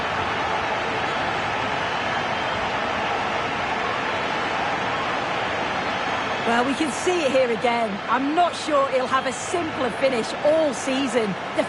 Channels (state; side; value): identical; both; correlation 1.00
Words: Well, we can see it here again. I'm not sure he'll have a simpler finish all season.